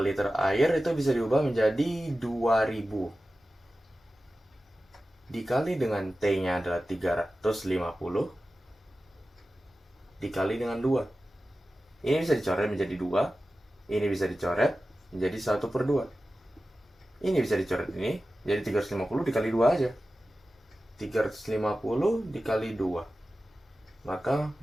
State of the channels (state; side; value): normal; both; correlation 0.94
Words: air itu bisa diubah menjadi 2000 dikali dengan T-nya adalah 350 dikali dengan 2. Ini bisa dicoret menjadi 2. Ini bisa dicoret menjadi 1/2. Ini bisa dicoret ini jadi 350 dikali 2 aja. 350 dikali 2. Maka